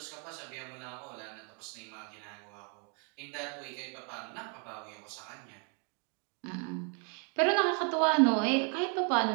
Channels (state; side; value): quieter; left; 37.9 dB